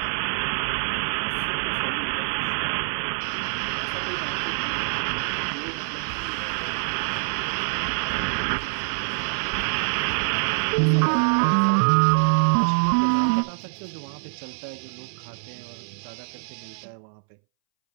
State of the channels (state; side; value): silent; left; 62 dB below the other